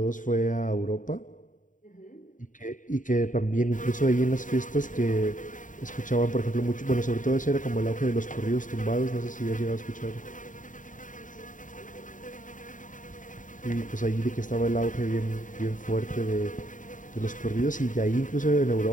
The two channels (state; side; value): late; right; 0.38 ms